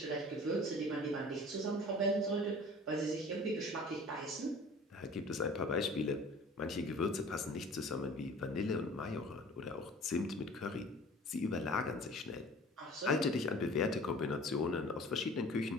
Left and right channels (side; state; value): both; normal; correlation 0.45